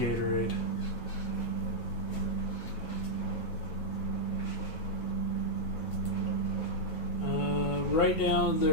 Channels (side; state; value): right; late; 9.2 ms